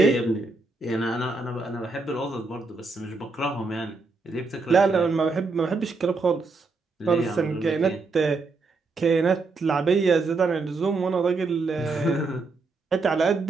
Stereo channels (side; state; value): left; quieter; 3.8 dB